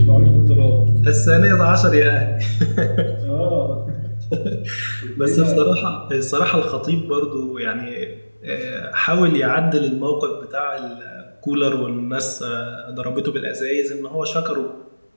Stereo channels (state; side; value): inverted; both; correlation -1.00